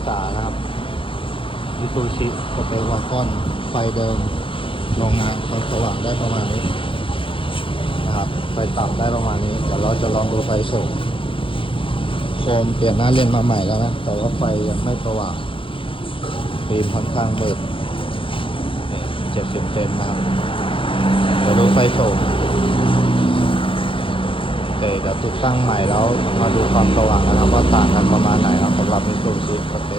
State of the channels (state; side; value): late; right; 0.25 ms